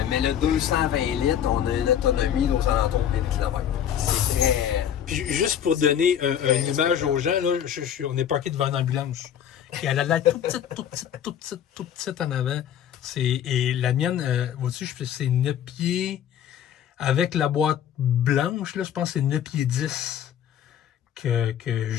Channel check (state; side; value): quieter; right; 9.6 dB